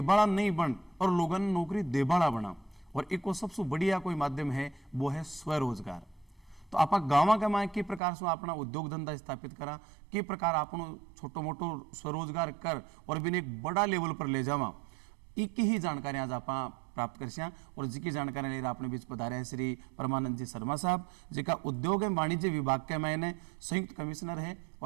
नहीं बन और लोगों ने नौकरी देबाड़ा बना और एक सबसे बढ़िया कोई माध्यम है वो है स्वरोजगार। तो आप गाँव के माए के प्रकार से अपना उद्योग धंधा स्थापित करा के प्रकार आपनो छोटो मोटो स्वरोजगार कर और बिन एक बड़ा लेवल पर ले जावा एक ही जानकारी आज आप प्राप्त कर और जिकी जानकारी लेकर अपने बीच पधारे हैं श्री परमानंद जी शर्मा साहब जिका उद्योग एवं वाणिज्य विभाग के मैंने संयुक्त कमिश्नर है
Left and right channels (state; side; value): drops out; left; at 8.0 s